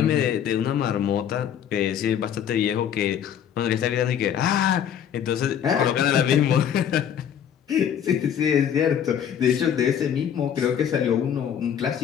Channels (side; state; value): right; quieter; 9.0 dB